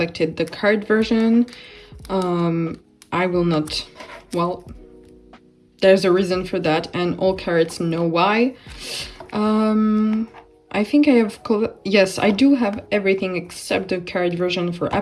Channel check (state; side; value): identical; both; correlation 1.00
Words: the card version. I will not, well, there's a reason for that, and all cards know why. I think I have, yes, I do have everything except the card version for